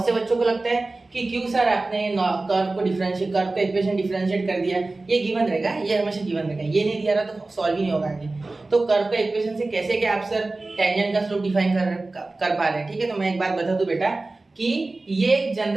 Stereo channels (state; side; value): quieter; left; 3.2 dB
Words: से बच्चों को लगता है कि क्यों सर आपने कर्व का इक्वेशन डिफरेंशिएट कर दिया, ये गिवन रहेगा, ये हमेशा गिवन रहेगा, ये नहीं दिया रहा तो सॉल्व ही नहीं होगा आगे। तो कर्व का इक्वेशन से कैसे क्या आप सर टेंजेंट का स्लोप डिफाइन कर पा रहे हैं, ठीक है। तो मैं एक बात बता दूं बेटा कि ये एक